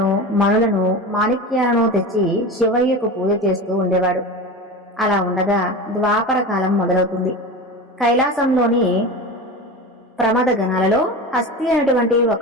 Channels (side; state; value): both; normal; correlation 0.28